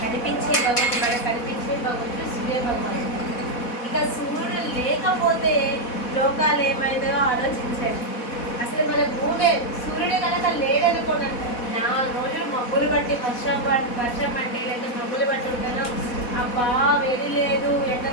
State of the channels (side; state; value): right; late; 4.1 ms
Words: కనిపించే భగవంతుడు, మనకు కనిపించే భగవంతుడు సూర్య భగవానుడు. ఇక సూర్యుడు లేకపోతే లోకాలు ఏమైందో ఆలోచించండి. అసలు మన భూమి సూర్యుడు కనుక లేదనుకోండి, 4 రోజులు మబ్బులు బట్టి వర్షం పట్టే లేదా మబ్బులు బట్టి ఉంటాను, అబ్బా వేడి లేదు, ఎండ